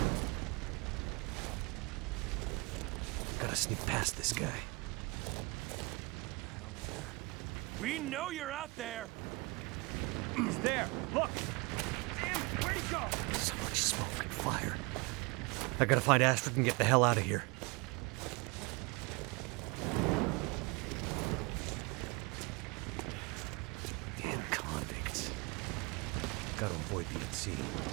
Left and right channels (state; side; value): quieter; left; 26.6 dB